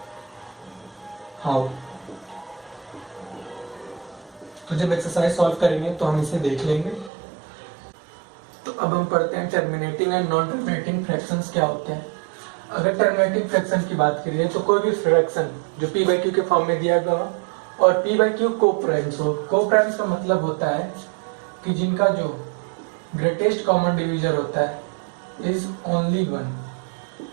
हाउ? तो जब एक्सरसाइज सॉल्व करेंगे तो हम इसे देख लेंगे। तो अब हम पढ़ते हैं terminating and non terminating fractions क्या होते हैं। अगर टर्मिनेटिंग फ्रैक्शन की बात करिए तो कोई भी फ्रैक्शन जो पी बाई क्यू के फॉर्म में दिया गया हो और पी बाई क्यू को-प्राइम्स हो। को-प्राइम्स का मतलब होता है कि जिनका जो ग्रेटेस्ट कॉमन डिवीजर होता है इज ओनली 1,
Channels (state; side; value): drops out; left; at 7.1 s